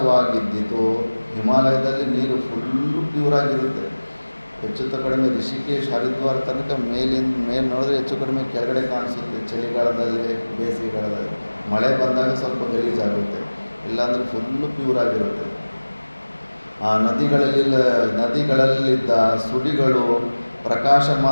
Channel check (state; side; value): inverted; both; correlation -1.00